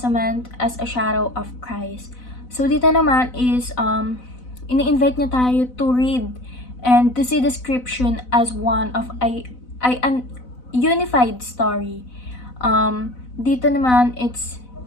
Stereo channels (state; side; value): late; right; 4.0 ms